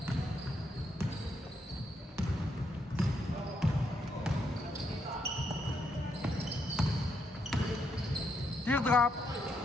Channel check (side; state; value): both; normal; correlation 0.78